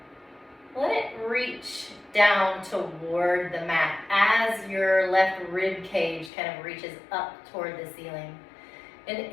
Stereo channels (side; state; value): right; drops out; at 6.3 s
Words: let it reach down toward the mat as your left rib cage kind of reaches up toward the ceiling. And